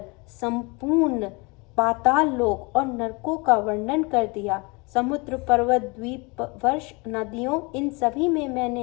संपूर्ण पाताल लोक और नरकों का वर्णन कर दिया। समुद्र, पर्वत, द्वीप, वर्ष, नदियों, इन सभी में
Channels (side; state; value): right; quieter; 28.2 dB